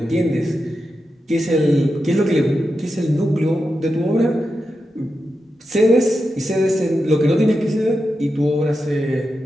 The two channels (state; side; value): normal; both; correlation 0.89